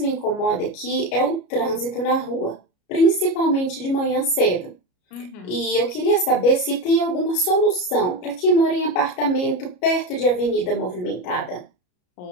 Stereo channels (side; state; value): right; late; 33 ms